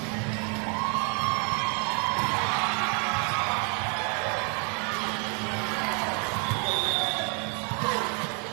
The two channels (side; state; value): left; quieter; 37.5 dB